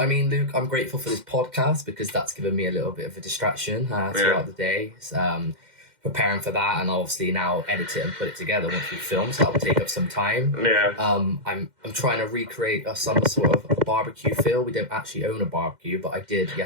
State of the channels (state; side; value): late; left; 2.1 ms